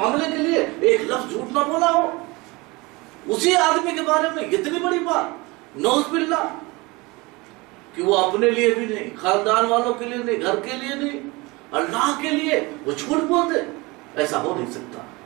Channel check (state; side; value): quieter; left; 24.3 dB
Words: کے لیے ایک لفظ جھوٹ نہ بولا ہو، اسی آدمی کے بارے میں اتنی بڑی بات، نعوذ باللہ، کہ وہ اپنے لیے بھی نہیں، خاندان والوں کے لیے نہیں، گھر کے لیے نہیں، اللہ کے لیے وہ جھوٹ بولتے؟ ایسا ہو نہیں سکتا۔